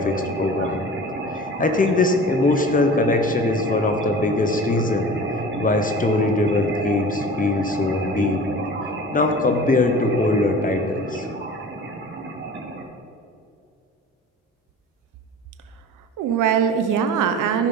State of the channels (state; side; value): normal; both; correlation 0.39